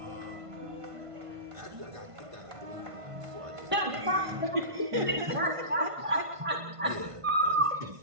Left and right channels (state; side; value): late; left; 1.5 ms